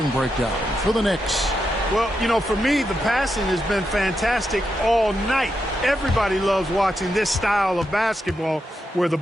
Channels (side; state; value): both; normal; correlation 0.85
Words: breakdown for the Knicks. Well, you know, for me, the passing has been fantastic all night. Everybody loves watching this style of basketball where the